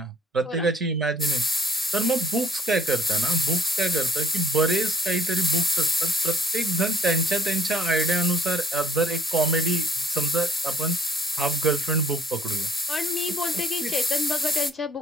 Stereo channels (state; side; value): normal; both; correlation 0.59